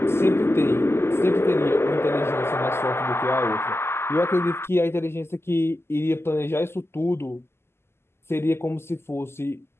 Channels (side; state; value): right; late; 0.12 ms